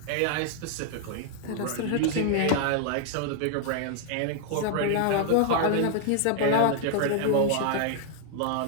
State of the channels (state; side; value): different; both; correlation 0.00